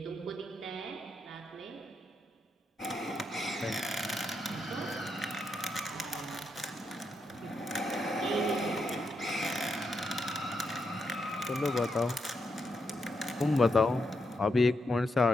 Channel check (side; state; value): both; normal; correlation 0.82